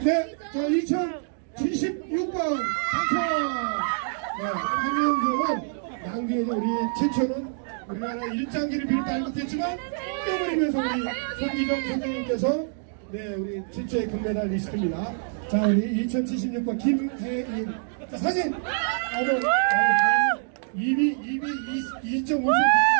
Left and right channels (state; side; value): silent; left; digital silence